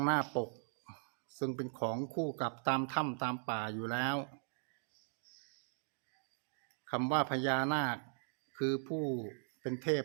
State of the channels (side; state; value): left; silent; digital silence